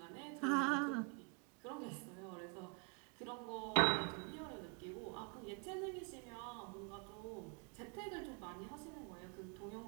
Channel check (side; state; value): left; quieter; 33.5 dB